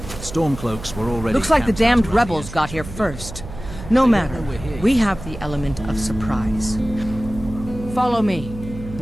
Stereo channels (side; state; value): right; noise; hum, 12 dB below the sound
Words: Stormcloaks were already... Looks like the camped damned out rebels got here first. No matter, we have the element of surprise. Follow me.